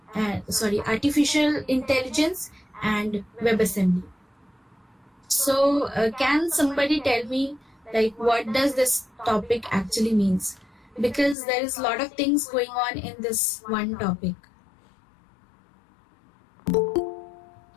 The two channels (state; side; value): drops out; right; at 11.4 s